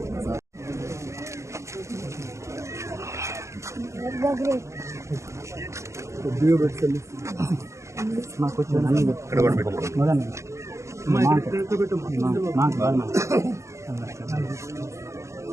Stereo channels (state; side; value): late; left; 0.14 ms